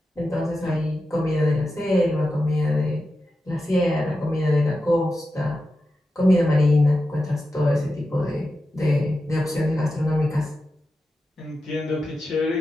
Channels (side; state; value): both; normal; correlation 0.91